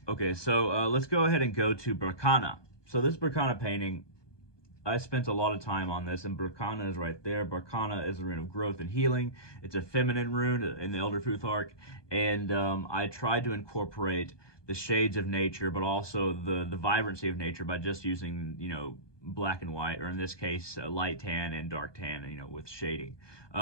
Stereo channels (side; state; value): right; late; 1.2 ms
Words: Okay, so let's go ahead and go to Berkana. So this Berkana painting, I spent a lot of time on this, and Berkana is right there. Berkana is a rune of growth and healing. It's a feminine rune in the Elder Futhark, and I tried to incorporate the shades of nature, but also the vibrancy of nature by just using, black and white, or in this case, light tan and dark tan, with shading.